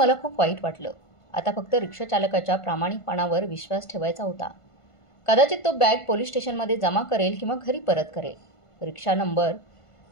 खूप वाईट वाटलं. आता फक्त रिक्षाचालकाच्या प्रामाणिकपणावर विश्वास ठेवायचा होता. कदाचित तो बॅग पोलीस स्टेशनमध्ये जमा करेल किंवा घरी परत करेल.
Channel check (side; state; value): right; late; 1.5 ms